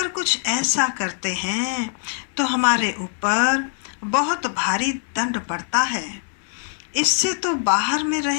कुछ ऐसा करते हैं तो हमारे ऊपर बहुत भारी दंड पड़ता है। इससे तो बाहर में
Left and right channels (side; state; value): right; silent; digital silence